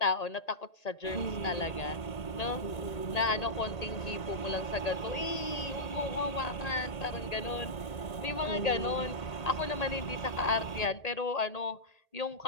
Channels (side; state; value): right; late; 1.8 ms